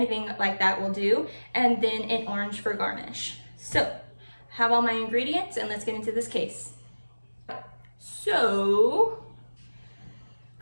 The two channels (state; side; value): inverted; both; correlation -1.00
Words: like that will do, and then an orange for garnish. So, have all my ingredients, and let's get into this case. So,